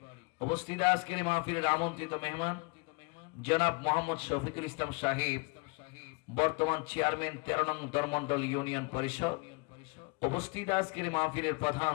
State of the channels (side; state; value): right; quieter; 30.1 dB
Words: উপস্থিত আজকের মাহফিলের আমন্ত্রিত মেহমান জনাব মোহাম্মদ শফিকুল ইসলাম সাহেব, বর্তমান চেয়ারম্যান 13 নং ধর্মমণ্ডল ইউনিয়ন পরিষদ, উপস্থিত আজকের মাহফিলের প্রধান